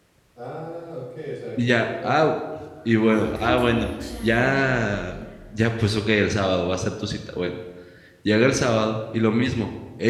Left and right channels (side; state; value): both; identical; correlation 1.00